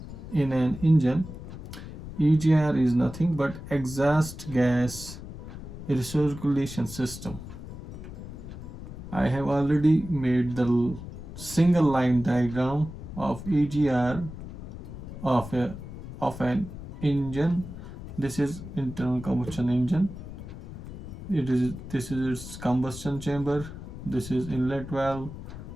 in an engine? EGR is nothing but exhaust gas recirculation system. I have already made the single line diagram of EGR of an engine. This is internal combustion engine. This is its combustion chamber. This is inlet valve.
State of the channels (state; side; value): noise; left; rumble, 12 dB below the sound